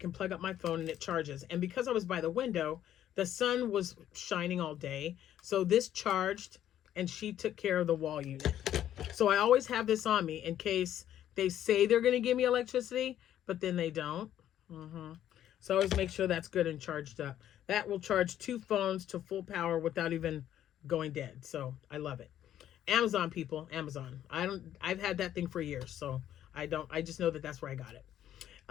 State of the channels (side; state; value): right; quieter; 11.3 dB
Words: plug up my phone, and it charges. And because I was by the window, the sun was shining all day. So this charged, and she took care of the wall unit. So I always have this on me in case they say they're going to give me electricity, but then they don't. So I always make sure that's good and charged up. That will charge 2 phones to full power without even going dead. So I love it. Amazon, people, Amazon. I've had that thing for years, so I just know that that's where I got it.